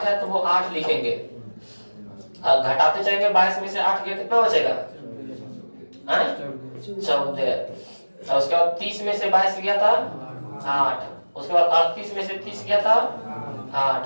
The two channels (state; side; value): inverted; both; correlation -1.00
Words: है तो वो 8 लिखेंगे, अब घटाते जाएंगे 22 में से 8 गया कितना बचेगा? 14। और उसके बाद 30 में से 22 गया था 8, उसके बाद 38 में से 30 गया था 8,